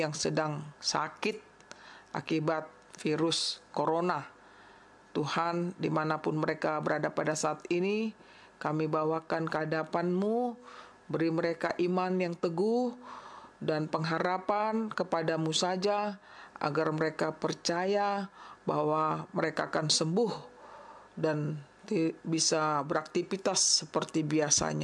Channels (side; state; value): both; identical; correlation 1.00